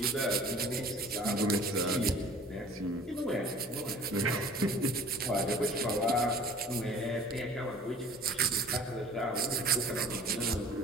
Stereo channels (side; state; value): both; normal; correlation 0.47